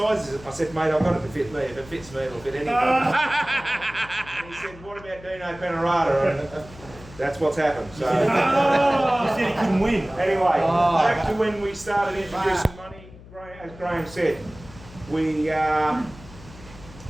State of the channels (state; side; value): noise; left; hum, 19 dB below the sound